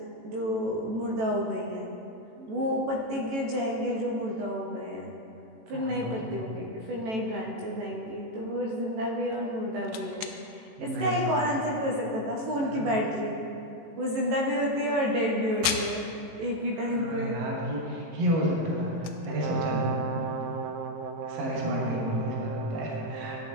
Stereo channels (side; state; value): left; late; 18 ms